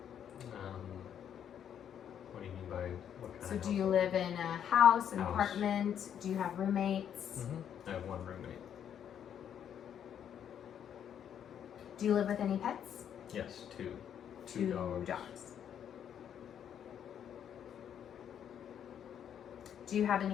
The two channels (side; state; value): right; quieter; 9.1 dB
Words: What do you mean by what kind So of do you household? live in a house, an House. apartment? Do you have roommates? I have one roommate. Do you live with any pets? Yes, two. Two dogs. Do you have